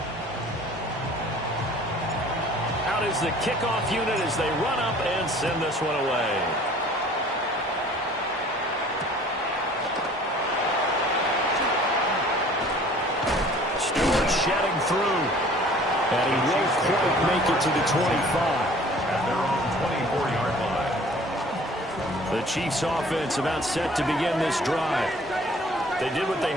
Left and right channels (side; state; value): both; normal; correlation 0.51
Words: Out is the kickoff unit as they run up and send this one away. Stewart shedding through. And he won't quite make it to the 25. At their own 24-yard line. The Chiefs offense about set to begin this drive. They did what they